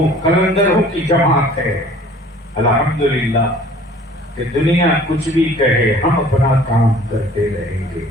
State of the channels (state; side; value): normal; both; correlation 0.50